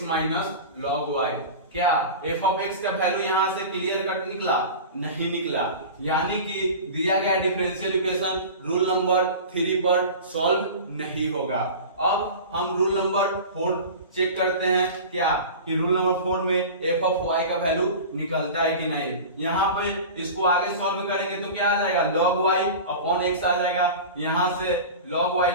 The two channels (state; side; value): inverted; both; correlation -0.33